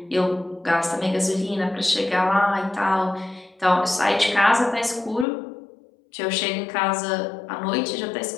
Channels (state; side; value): drops out; right; at 5.2 s